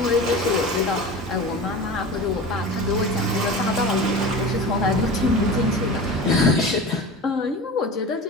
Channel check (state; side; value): normal; both; correlation 0.32